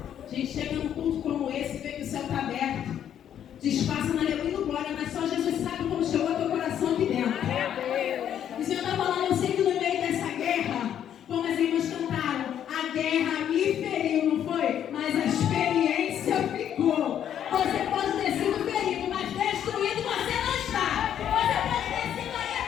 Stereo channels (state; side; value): quieter; right; 9.8 dB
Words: A gente chega num culto como esse e vê que o céu está aberto, disfarça na aleluia do glória, mas só Jesus sabe como chegou ao teu coração aqui dentro. O Senhor está falando, eu sei que no meio dessa guerra, como as irmãs cantaram, a guerra me feriu, não foi? Mas a experiência ficou. Você pode ter sido ferido, mas destruído você não está. Você pode ter sido aí